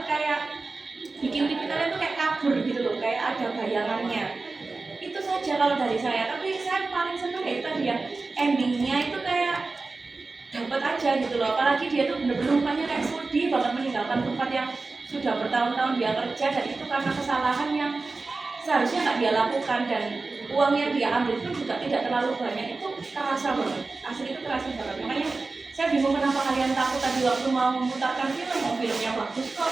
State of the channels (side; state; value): left; quieter; 3.7 dB